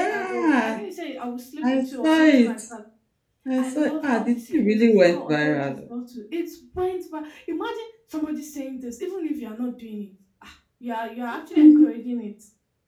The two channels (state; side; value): identical; both; correlation 1.00